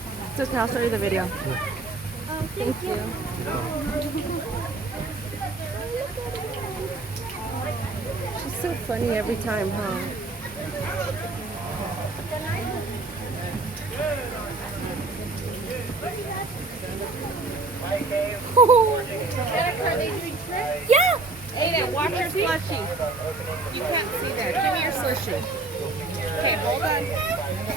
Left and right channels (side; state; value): left; quieter; 3.4 dB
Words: It's okay, I'll show you the video. Thank you. She's so funny every time, huh? Yeah. Aiden, watch your slushie. You can't see that. Give me your slushie. Okay, hold on.